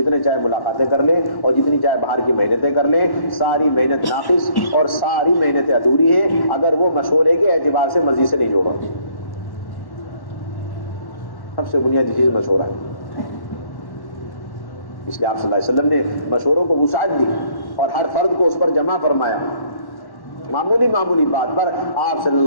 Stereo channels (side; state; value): right; late; 1.1 ms